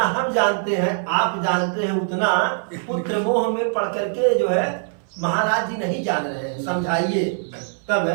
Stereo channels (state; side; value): silent; left; 60 dB below the other